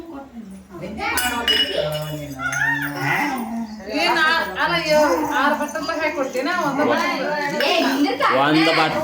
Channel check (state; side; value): identical; both; correlation 1.00